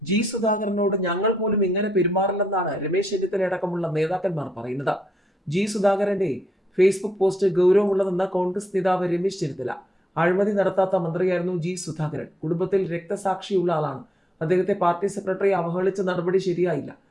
ജി സുധാകരനോട് ഞങ്ങൾ പോലും ഇങ്ങനെ പെരുമാറില്ലെന്നാണ് രമേശ് ചെന്നിത്തല അടക്കമുള്ള നേതാക്കന്മാർ പറയുന്നത്. ജി സുധാകരന്റെ ഫേസ്ബുക്ക് പോസ്റ്റ് ഗൗരവമുള്ളതെന്ന കോൺഗ്രസ് നേതാവ് രമേശ് ചെന്നിത്തല. അഴിമതി നടത്താത്ത മന്ത്രിയായിരുന്നു ജി സുധാകരൻ. കുടുംബത്തിൽ രക്തസാക്ഷിയുള്ള ആളാണ്. അദ്ദേഹത്തെ പാർട്ടി സെക്രട്ടറി അവഹേളിച്ച നടപടി ശരിയായില്ല.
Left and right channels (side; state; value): both; normal; correlation 0.78